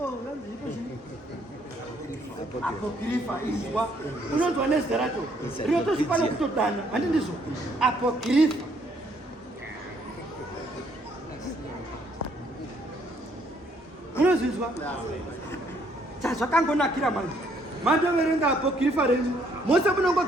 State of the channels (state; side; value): normal; both; correlation 0.67